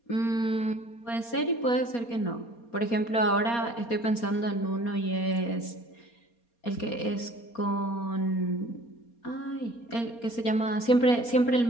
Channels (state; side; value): late; right; 4.3 ms